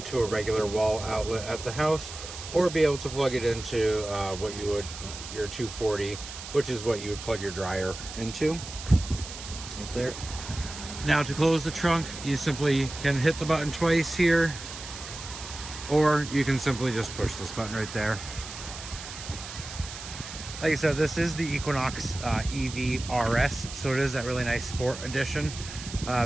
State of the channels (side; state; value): right; noise; hiss, 11 dB below the sound